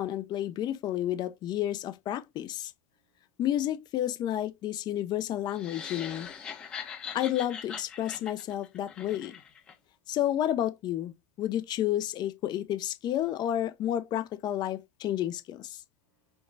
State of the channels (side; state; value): right; quieter; 11.6 dB